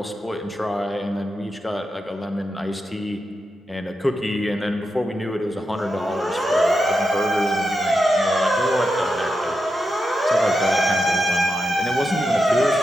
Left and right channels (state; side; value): normal; both; correlation 0.87